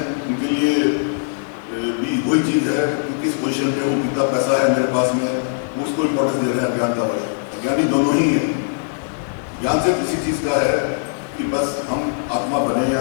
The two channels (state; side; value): silent; right; 66 dB below the other